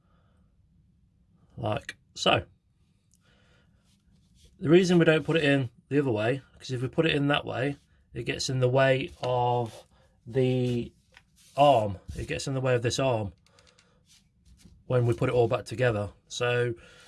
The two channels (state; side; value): identical; both; correlation 1.00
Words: like so. The reason we don't put it in the other way, because if we put it in that way, it gets in the way of the arm. It gets in the way of this arm when we put it all back together, so